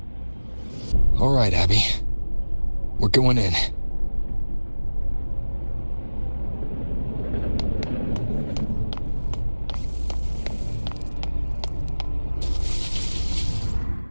All right, Abby. We're going in.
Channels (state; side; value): inverted; both; correlation -1.00